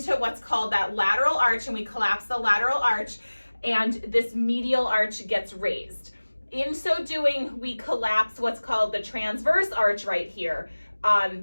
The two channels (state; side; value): inverted; both; correlation -1.00